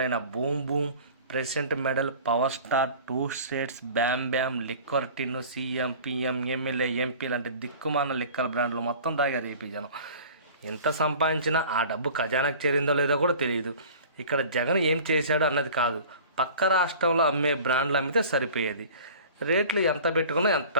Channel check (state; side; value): inverted; both; correlation -0.43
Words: Boom Boom, President Medal, Power Star, Two States, Bam Bam, liquor tin, CM, PM, MLA, MP లాంటి దిక్కుమాన లిక్కర్ బ్రాండ్లు మొత్తం తాగారు ఏపీ జనం. ఎంత సంపాదించినా ఆ డబ్బు ఖజానాకు చేరిందో లేదో కూడా తెలియదు. ఇక్కడ జగన్ ఏం చేశాడు అన్నది కాదు, పక్క రాష్ట్రంలో అమ్మే బ్రాండ్లు అమ్మితే సరిపోయేది. రేట్లు ఎంత పెట్టుకున్నా ఎంత